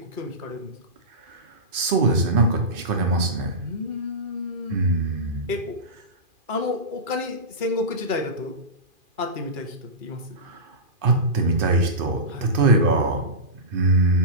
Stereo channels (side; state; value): left; late; 2.5 ms